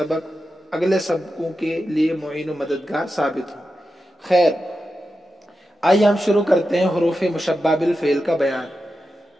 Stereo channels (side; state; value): both; normal; correlation 0.90